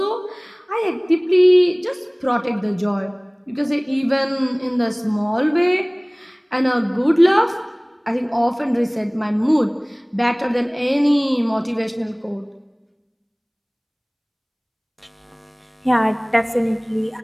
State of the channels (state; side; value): identical; both; correlation 1.00